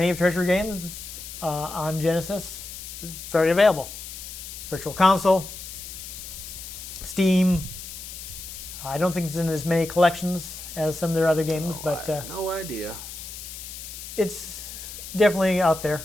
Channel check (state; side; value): noise; left; hiss, 11 dB below the sound